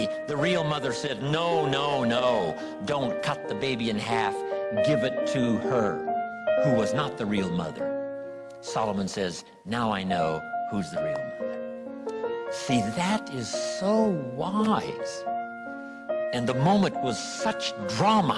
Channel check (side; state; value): both; identical; correlation 1.00